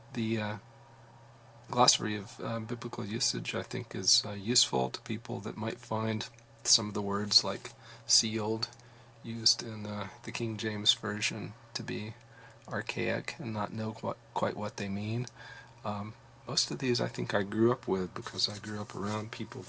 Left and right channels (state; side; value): identical; both; correlation 1.00